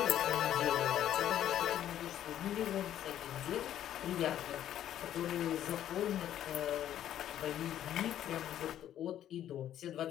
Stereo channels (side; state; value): right; quieter; 11.3 dB